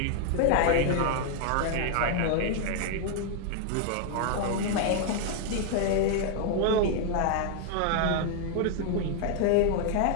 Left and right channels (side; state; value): both; different; correlation 0.00